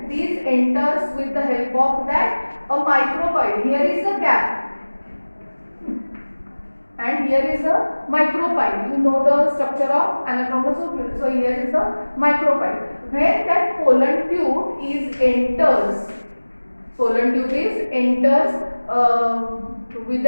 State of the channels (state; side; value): inverted; both; correlation -1.00